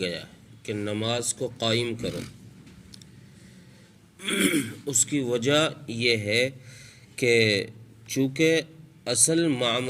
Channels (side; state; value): both; identical; correlation 1.00